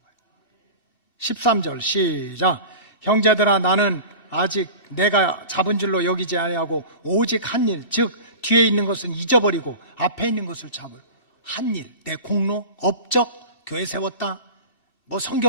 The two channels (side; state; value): both; inverted; correlation -0.33